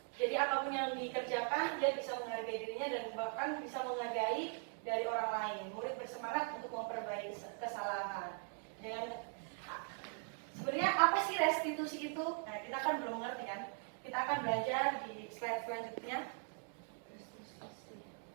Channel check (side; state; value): left; silent; 51 dB below the other